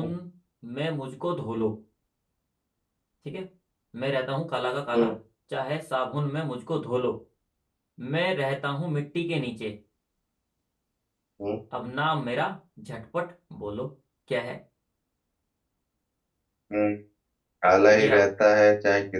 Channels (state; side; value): identical; both; correlation 1.00